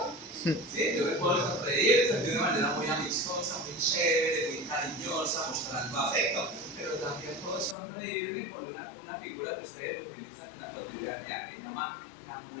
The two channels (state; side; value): drops out; right; at 7.8 s